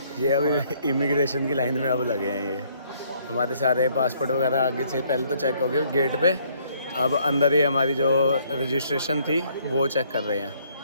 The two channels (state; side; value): inverted; both; correlation -0.65